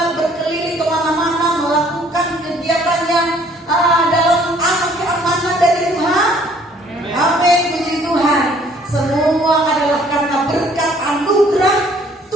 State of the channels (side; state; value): both; normal; correlation 0.59